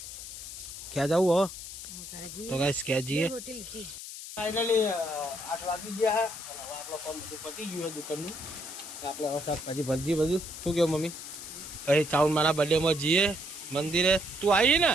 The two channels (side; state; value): left; noise; hiss, 10 dB below the sound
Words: ક્યાં જવું હો તો ગાઈસ ક્યાં જઈએ ફાઇનલી 8 વાગી ગયા અને હવે આપણો કામ બધું પતી ગયું દુકાનનું તો આપણે હવે શાકભાજી ભરજી બધું શું કહ્યું મમ્મી પછી ચાઉન મારા બર્થડેમાં જઈએ મંદિરે તું આવી